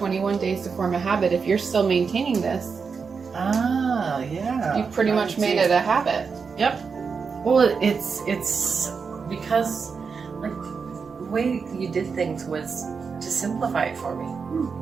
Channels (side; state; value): left; quieter; 5.5 dB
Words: days to form a habit. If you're still maintaining this, yeah. you've pretty much made it a habit. Yep. Well, it's because like the way you did things was to simplify it for